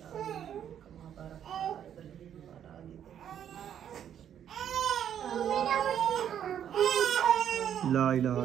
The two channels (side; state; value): left; quieter; 9.5 dB